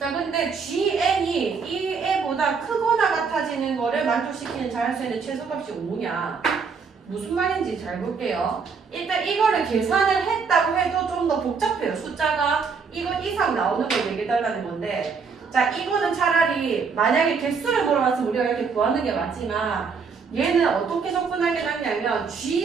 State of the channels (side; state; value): left; quieter; 5.4 dB